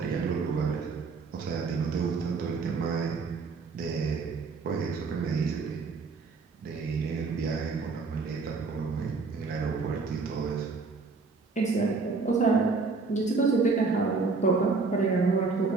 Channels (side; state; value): left; quieter; 4.4 dB